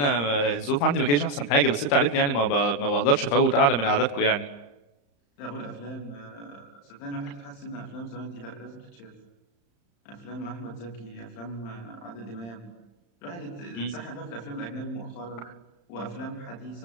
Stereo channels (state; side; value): late; right; 35 ms